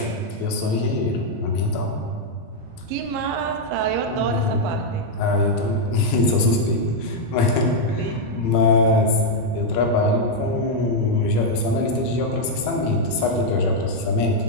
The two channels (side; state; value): both; normal; correlation -0.01